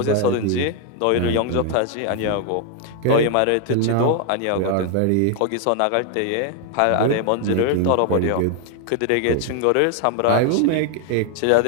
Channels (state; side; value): different; both; correlation 0.00